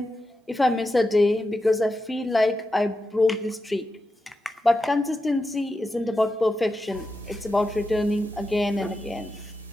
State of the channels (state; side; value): normal; both; correlation 0.89